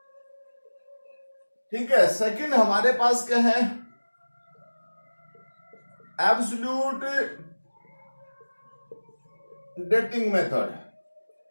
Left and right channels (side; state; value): both; inverted; correlation -1.00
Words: ठीक है। सेकंड हमारे पास क्या है, एब्सोल्यूट डेटिंग मेथड।